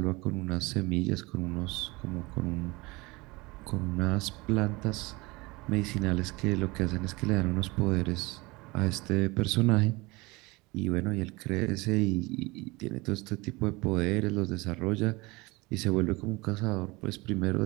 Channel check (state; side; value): quieter; left; 23.6 dB